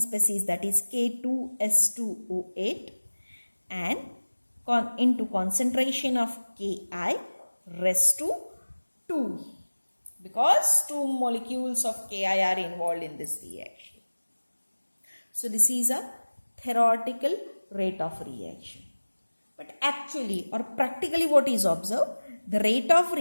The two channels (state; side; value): inverted; both; correlation -1.00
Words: that is K2S2O8, and into concentration of Ki raised to 2, because 2 molecules of Ki are involved in this reaction. So this is a theoretical rate of reaction. But actually or practically what is observed? The rate of